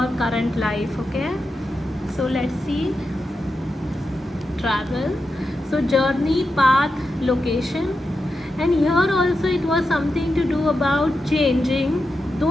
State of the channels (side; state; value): both; normal; correlation 0.89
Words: current life, okay. So let's see. Travel, so journey, path, location. And here also it was something to do about changing, though